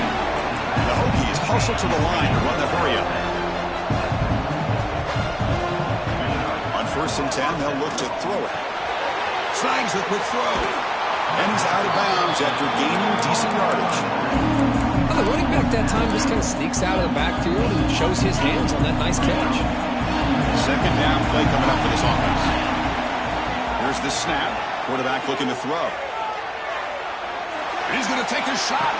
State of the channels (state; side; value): identical; both; correlation 1.00